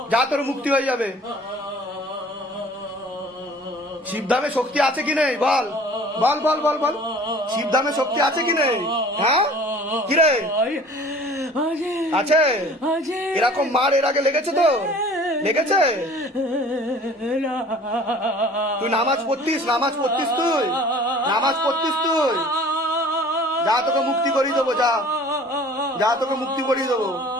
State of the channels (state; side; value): normal; both; correlation 0.48